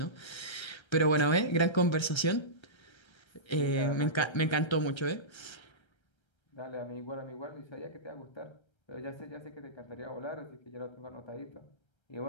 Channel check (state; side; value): late; right; 1.3 ms